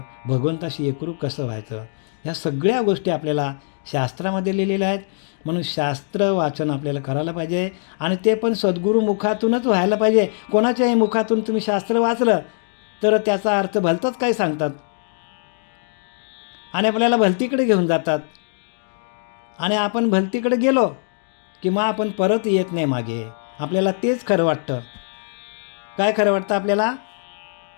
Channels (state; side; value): silent; right; digital silence